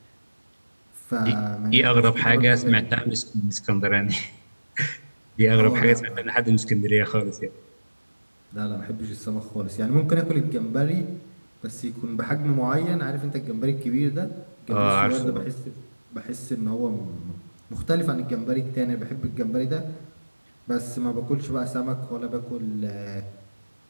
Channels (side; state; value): both; inverted; correlation -1.00